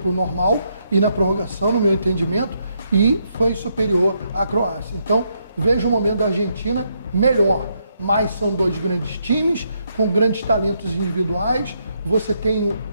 normal e na prorrogação, no meu entendimento, e foi superior à Croácia. Então, vejo o momento da Argentina melhor. Mas são dois grandes times, com grandes talentos individuais. Você tem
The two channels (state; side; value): inverted; both; correlation -0.77